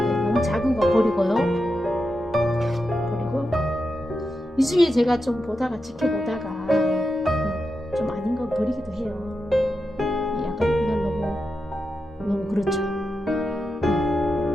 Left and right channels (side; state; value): both; normal; correlation 0.88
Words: 너무 작은 거 버리고요. 그리고 이 중에 제가 좀 지켜보다가 좀 아닌 거 버리기도 해요. 약간 이건 너무 그렇죠.